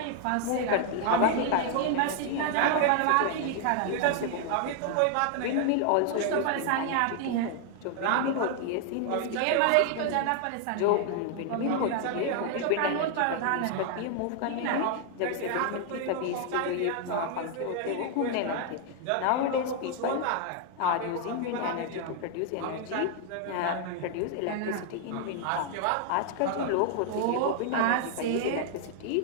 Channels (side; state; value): both; different; correlation 0.00